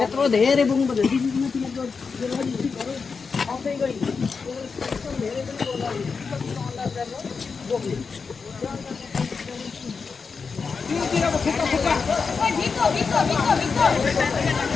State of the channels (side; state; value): right; quieter; 5.1 dB